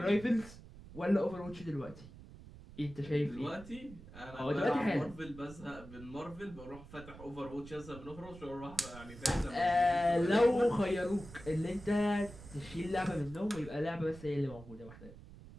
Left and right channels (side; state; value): right; noise; rumble, 17 dB below the sound